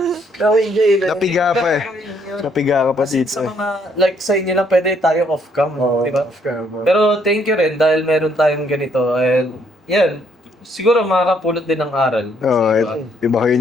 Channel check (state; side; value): normal; both; correlation 0.69